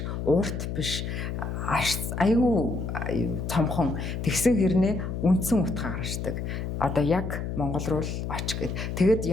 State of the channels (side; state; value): left; noise; hum, 4 dB below the sound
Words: урт биш аюу цомхон тэгсэн хэрнээ үндсэн утга гаргаждаг. Одоо яг Монгол руу л оч гэд. Тэгэд